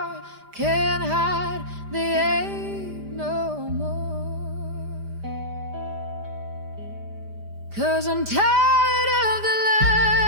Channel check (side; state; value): left; late; 5.0 ms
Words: can't hide the ache no more. 'Cause I'm tired of the